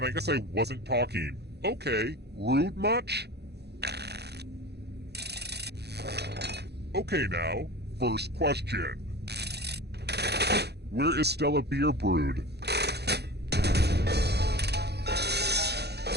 I guess I wasn't talking. Okay, rude much? Okay now, first question. Where is Stella beer brewed?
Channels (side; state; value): left; late; 0.48 ms